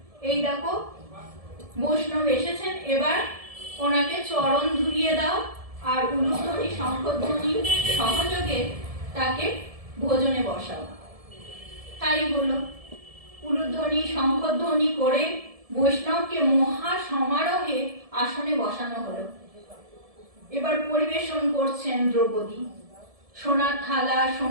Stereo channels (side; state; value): left; late; 1.7 ms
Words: এই দেখো বৈষ্ণব এসেছেন, এবার ওনাকে চরণ ধুলিয়ে দাও আর উলুধ্বনি শঙ্খধ্বনি সহযোগে তাকে ভোজনে বসাও। তাই হলো, উলুধ্বনি শঙ্খধ্বনি করে বৈষ্ণবকে মহা সমারোহে আসনে বসানো হলো। এবার পরিবেশন করছেন দ্রৌপদী, সোনার থালা